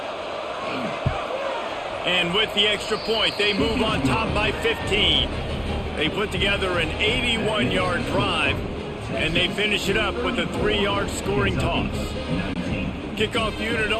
And with the extra point, they move on top by 15. They put together an 81-yard drive, and they finish it up with a 3-yard scoring toss. Kickoff unit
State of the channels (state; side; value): identical; both; correlation 1.00